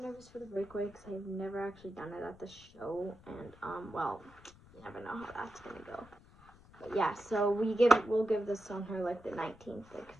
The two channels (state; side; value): noise; left; rumble, 23 dB below the sound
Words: nervous for the breakaway because I've never actually done it at the show, and well, you never know how that's gonna go. But yeah, so we'll give this on her like the 19th, like